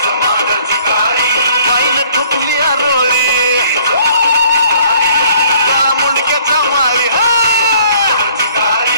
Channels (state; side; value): inverted; both; correlation -0.59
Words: माईन ठुकली आरोळी काळा मुंडक्याच्या माळी.